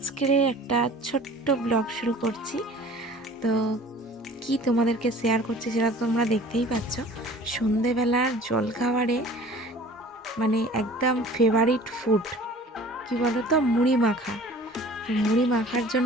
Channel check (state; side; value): normal; both; correlation 0.46